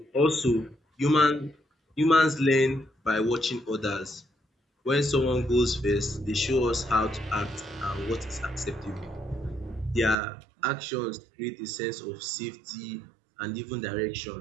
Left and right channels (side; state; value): left; drops out; at 10.2 s